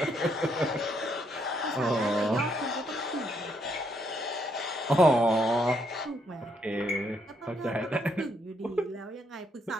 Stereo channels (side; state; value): both; normal; correlation 0.74